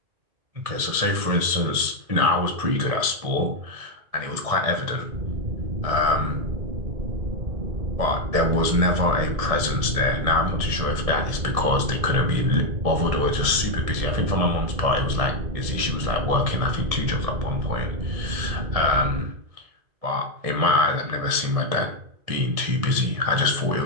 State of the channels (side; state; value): left; late; 1.7 ms